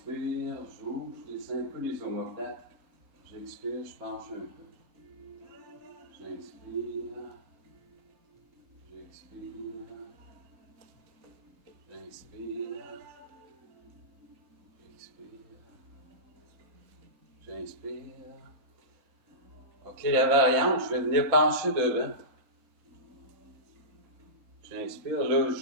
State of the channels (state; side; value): normal; both; correlation -0.19